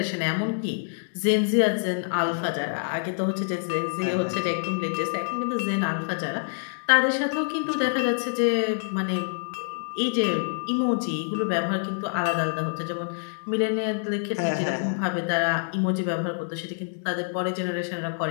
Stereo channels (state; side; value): silent; right; digital silence